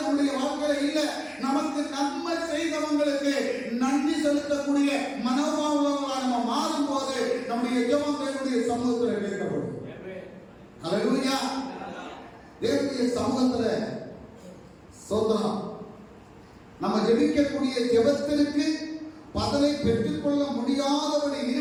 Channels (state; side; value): identical; both; correlation 1.00